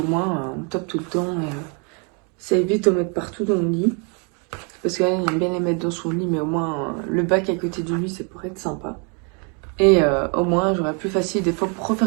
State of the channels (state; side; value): quieter; left; 36.1 dB